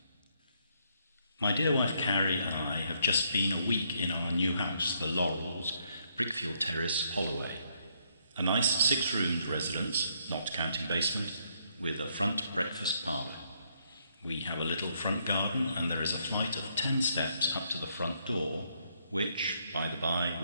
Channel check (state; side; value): inverted; both; correlation -0.73